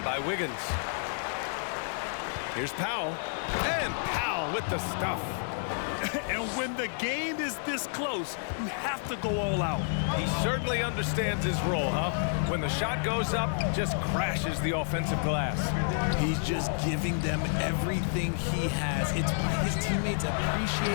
by Wiggins. Here's Powell. And Powell with the stuff. And when the game is this close, you have to go all out. He certainly understands his role, huh? When the shot goes up, just crashes the offensive glass. He's just giving them everything he has. It's why his teammates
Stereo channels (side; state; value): right; silent; digital silence